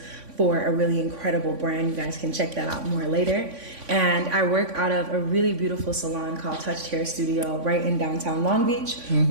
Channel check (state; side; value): late; left; 3.5 ms